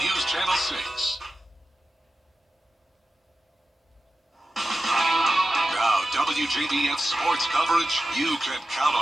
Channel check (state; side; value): normal; both; correlation 0.93